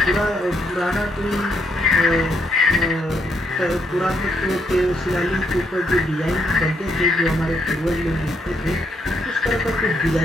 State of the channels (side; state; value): both; normal; correlation 0.75